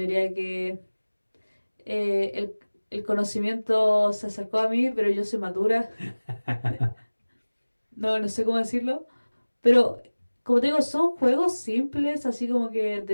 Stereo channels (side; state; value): both; inverted; correlation -1.00